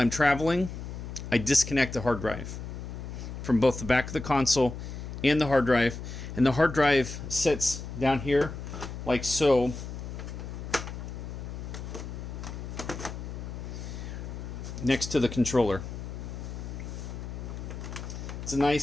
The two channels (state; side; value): noise; left; hum, 8 dB below the sound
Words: traveling, I disconnect the hard drive from both the back of the console and the hard drive. And the hard drive sits down here like so. Next to the controller. It's a